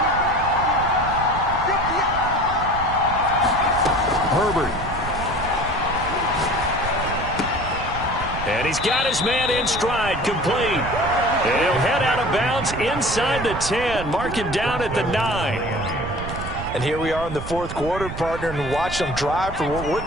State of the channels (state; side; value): noise; right; rumble, 9 dB below the sound